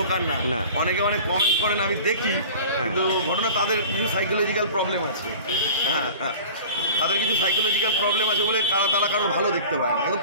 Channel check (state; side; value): inverted; both; correlation -0.40